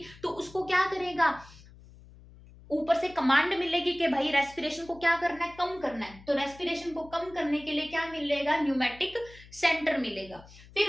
तो उसको क्या करेगा, ऊपर से कमांड मिलेगी कि भाई रेस्पिरेशन को क्या करना है, कम करना है, तो रेस्पिरेशन को कम करने के लिए क्या मिलेगा, न्यूमैटिक सेंटर मिलेगा।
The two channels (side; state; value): left; noise; hum, 21 dB below the sound